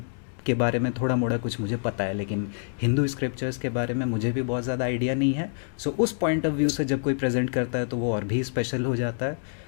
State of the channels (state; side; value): silent; right; digital silence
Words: के बारे में थोड़ा मोड़ा कुछ मुझे पता है, लेकिन हिंदू स्क्रिप्चर्स के बारे में मुझे भी बहुत ज़्यादा आइडिया नहीं है। सो उस पॉइंट ऑफ व्यू से जब कोई प्रेजेंट करता है तो वो और भी स्पेशल हो जाता है।